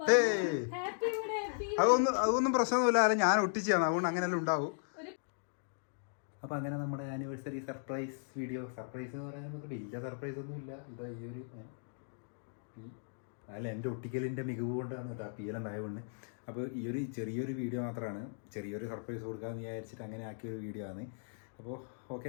അതൊന്നും പ്രശ്നമൊന്നുമില്ല, അല്ല ഞാൻ ഒട്ടിച്ചാണ്, അതുകൊണ്ട് അങ്ങനെല്ലാം ഉണ്ടാവും. അപ്പൊ അങ്ങനെ നമ്മുടെ ആനിവേഴ്സറി സർപ്രൈസ് വീഡിയോ, സർപ്രൈസ് എന്ന് പറയാൻ വലിയ സർപ്രൈസ് ഒന്നും ഇല്ല. ഇതാ ഈ ഒരു അല്ല എൻ്റെ ഒട്ടിക്കലിൻ്റെ മികവ് കൊണ്ടാണ് കേട്ടോ പീലം ഉണ്ടായതുകൊണ്ട്. അപ്പോൾ ഈ ഒരു ചെറിയൊരു വീഡിയോ മാത്രമാണ്, ചെറിയൊരു സർപ്രൈസ് കൊടുക്കാമെന്ന് വിചാരിച്ചിട്ട് അങ്ങനെ ആക്കിയൊരു വീഡിയോ ആണ്. അപ്പോൾ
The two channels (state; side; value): silent; right; digital silence